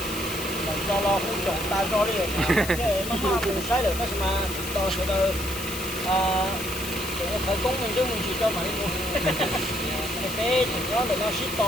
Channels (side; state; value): left; noise; hiss, 8 dB below the sound